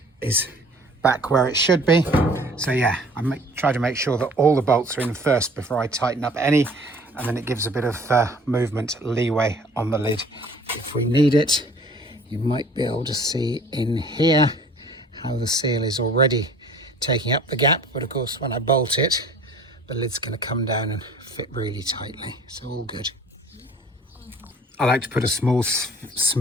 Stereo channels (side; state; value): both; normal; correlation 0.50